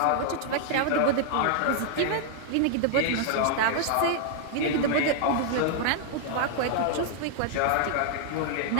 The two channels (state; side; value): different; both; correlation -0.01